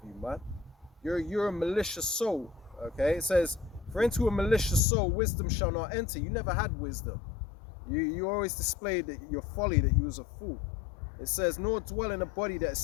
you, man. You're a malicious soul, okay? It says, for into a malicious soul wisdom shall not enter. You never had wisdom. You always displayed your folly, that you was a fool. It says, nor dwell in a body that is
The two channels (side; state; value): right; drops out; at 4.8 s